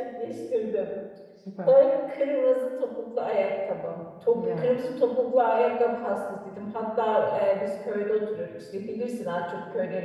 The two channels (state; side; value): identical; both; correlation 1.00